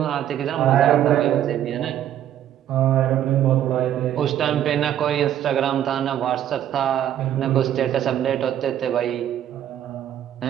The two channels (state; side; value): quieter; left; 11.0 dB